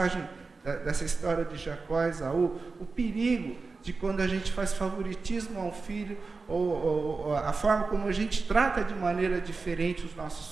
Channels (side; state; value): left; quieter; 4.1 dB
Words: dessa história de Jacó e Esaú, o perigo de quando a gente faz favoritismo ao filho, ou a forma como a gente trata de maneira diferente os